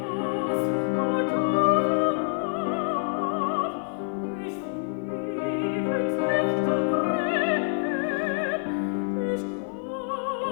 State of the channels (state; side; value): silent; right; 55 dB below the other